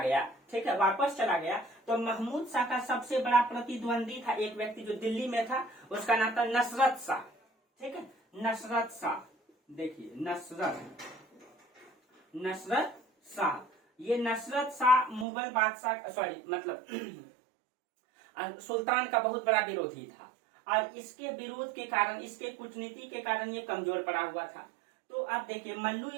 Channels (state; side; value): drops out; left; at 15.2 s